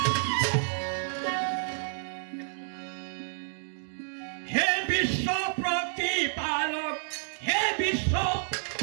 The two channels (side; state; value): left; silent; digital silence